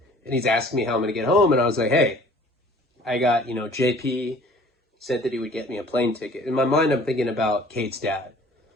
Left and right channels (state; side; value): normal; both; correlation 0.51